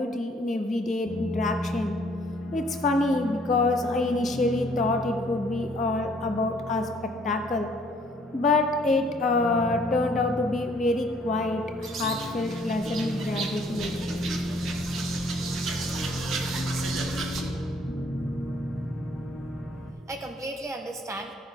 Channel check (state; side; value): normal; both; correlation 0.61